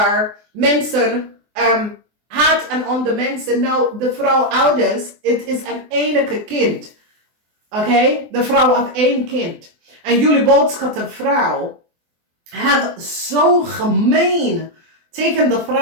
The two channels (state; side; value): late; left; 24 ms